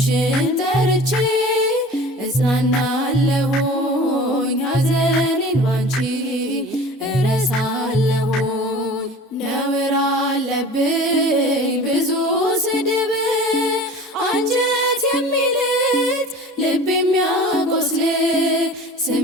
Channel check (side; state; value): both; normal; correlation 0.40